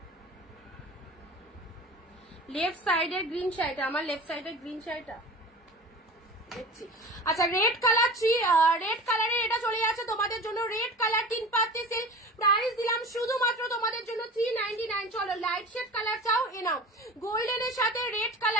লেফট সাইডের গ্রিন শাড়িটা, আমার লেফট সাইডের গ্রিন শাড়িটা দেখছি। আচ্ছা, রেড কালারের এটা চলে যাচ্ছে তোমাদের জন্য। রেড কালার 3 পাত্তি সিল্ক, প্রাইস দিলাম শুধুমাত্র তোমাদের জন্য 399। চলো, লাইট শেড কালার চাও, এ নাও। গোল্ডেনের সাথে রেড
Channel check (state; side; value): normal; both; correlation 0.36